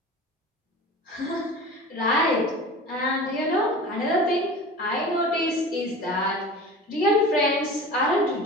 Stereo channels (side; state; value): both; normal; correlation 0.36